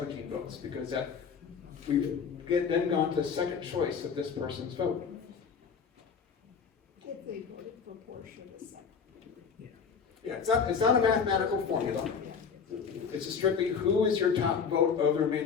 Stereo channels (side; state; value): right; quieter; 6.3 dB